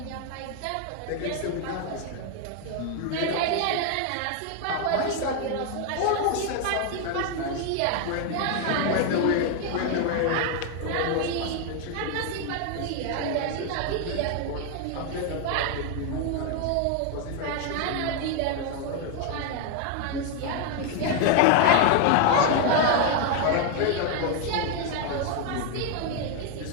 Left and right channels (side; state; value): both; different; correlation 0.01